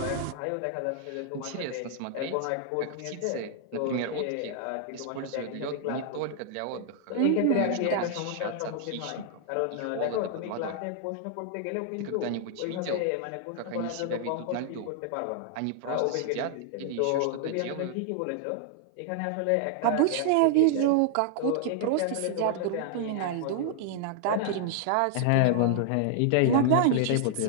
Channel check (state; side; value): different; both; correlation -0.01